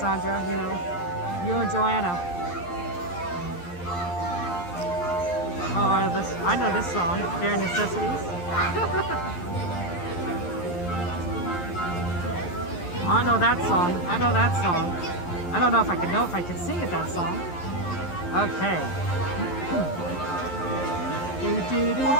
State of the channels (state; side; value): late; right; 11 ms